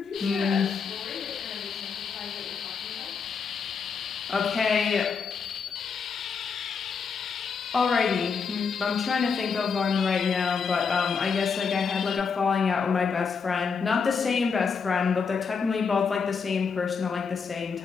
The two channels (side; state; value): right; quieter; 5.7 dB